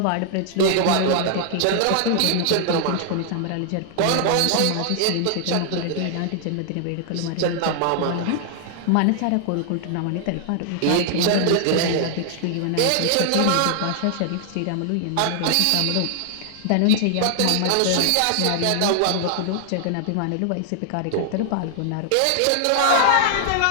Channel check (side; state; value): both; different; correlation 0.00